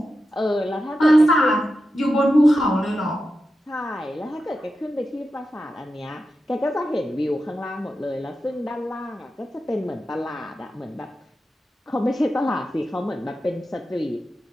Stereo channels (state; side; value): normal; both; correlation 0.90